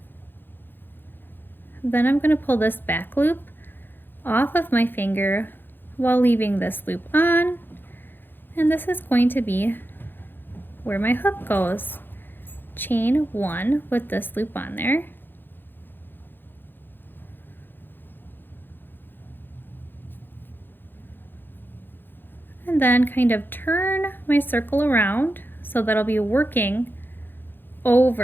Then I'm going to pull this back loop off of my finger while leaving this loop on. And this is going to be where my hook goes. Chain 1 with this loop on there. And then kind of turn my circle around so that I'll be working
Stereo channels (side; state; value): right; late; 0.097 ms